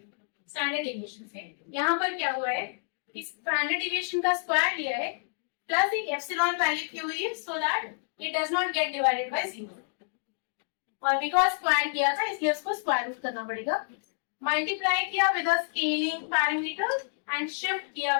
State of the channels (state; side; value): silent; right; digital silence